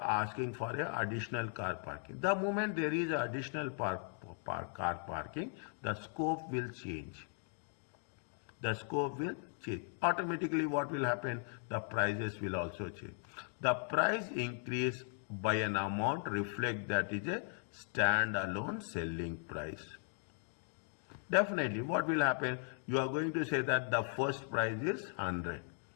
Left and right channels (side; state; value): right; silent; 52 dB below the other